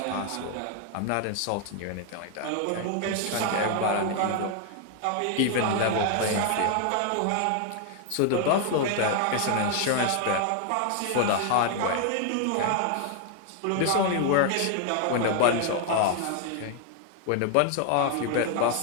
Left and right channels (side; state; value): both; different; correlation 0.00